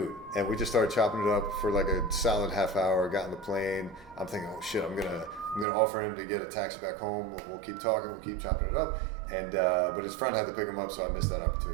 And we just started chopping it up for like a solid half hour, got on the plane. I'm thinking, oh shit, I'm gonna offer him to get a taxi back home. We'll keep talking, we'll keep chopping it up. And but his friend had to pick him up, so I missed that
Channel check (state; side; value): drops out; left; at 5.7 s